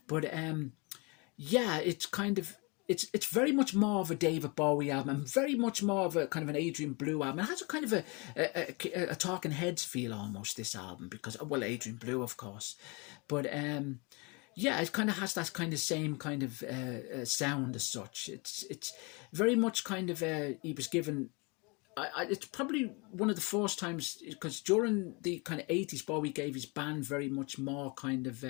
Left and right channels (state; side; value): quieter; right; 29.4 dB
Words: But yeah, it's kind of it's very much more of a David Bowie album and very much more of a kind of an Adrian Blue album. It has a kind of a Talking Heads feel almost, this album, because, well, Adrian Blue, of course, but yeah, it kind of has that kind of same kind of sound as such. It's very much kind of he was given. It's probably one of the first times, because during the kind of 80s, Bowie gave his band very much more kind of